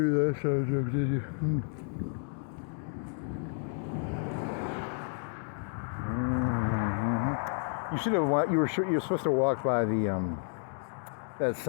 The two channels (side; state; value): right; silent; 57 dB below the other